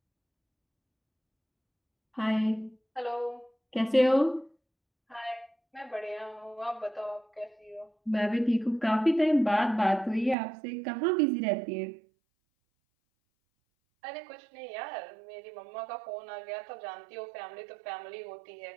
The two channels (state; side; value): drops out; left; at 10.4 s